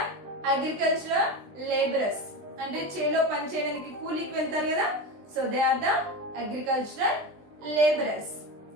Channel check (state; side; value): late; left; 20 ms